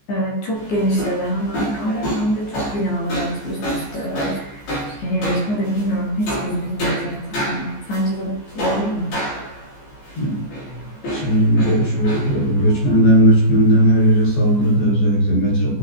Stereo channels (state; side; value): late; right; 14 ms